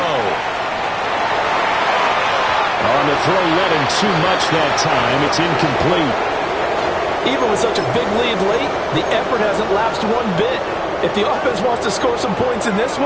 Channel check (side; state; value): both; identical; correlation 1.00